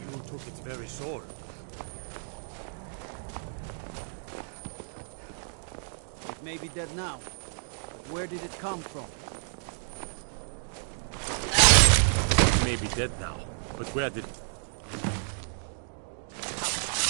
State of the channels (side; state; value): left; silent; digital silence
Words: took its very soul. It may be dead now, but where did it come from? It may be dead now, but where did...